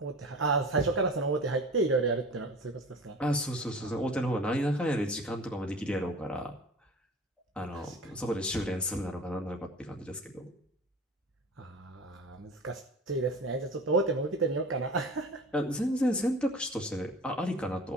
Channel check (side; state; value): both; normal; correlation 0.38